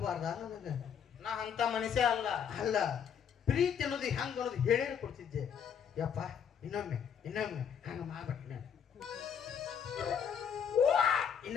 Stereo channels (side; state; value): right; quieter; 7.8 dB